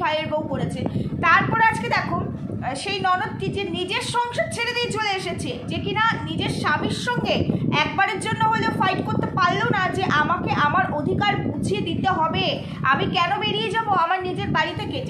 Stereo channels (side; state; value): both; identical; correlation 1.00